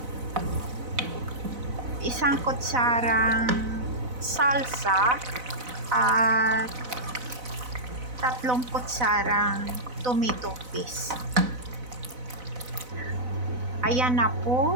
isang kutsarang salsa at 3 kutsarang tomato paste. Ayan na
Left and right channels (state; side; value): late; left; 4.0 ms